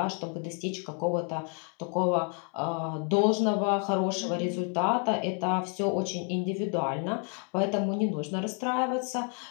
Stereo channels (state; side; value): quieter; right; 37.6 dB